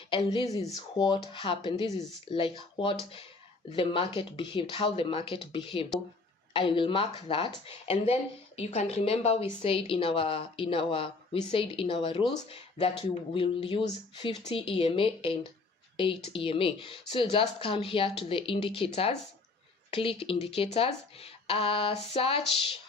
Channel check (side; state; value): right; quieter; 3.7 dB